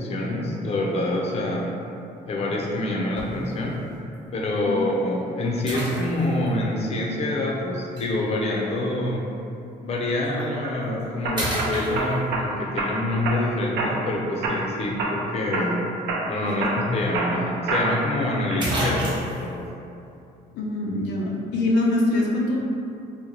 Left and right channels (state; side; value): normal; both; correlation 0.49